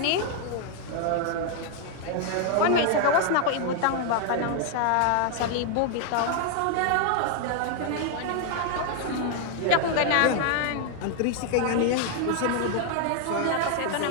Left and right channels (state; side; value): different; both; correlation 0.00